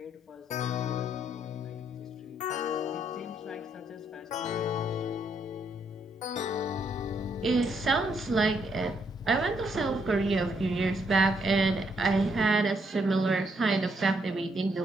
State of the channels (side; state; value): both; normal; correlation 0.74